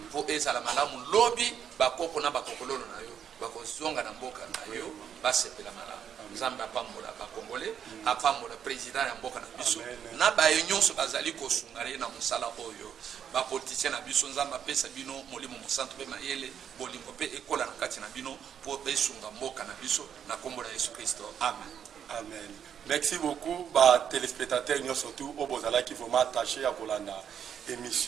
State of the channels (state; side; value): quieter; left; 8.5 dB